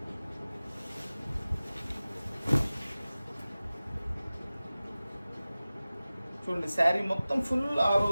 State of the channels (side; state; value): both; inverted; correlation -0.97